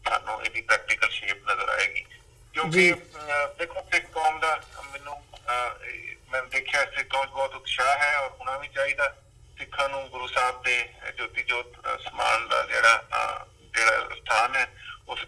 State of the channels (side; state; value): both; identical; correlation 1.00